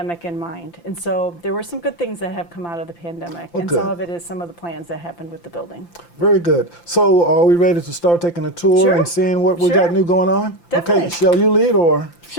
in mind? And so there were some good things that have come out of the pandemic. Well, and good. some of it is some of the plans that happened with the building. Very good. So are we ready to start taking a tour Sure. and seeing what we Sure. got new going on? Definitely. Okay, shall you lead or?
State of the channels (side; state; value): right; late; 5.8 ms